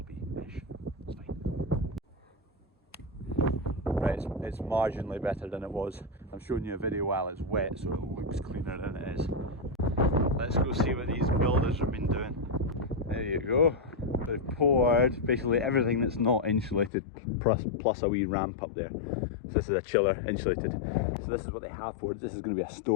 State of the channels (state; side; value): drops out; right; at 16.9 s